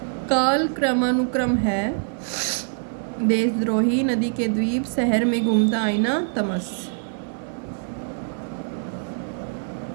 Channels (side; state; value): left; silent; digital silence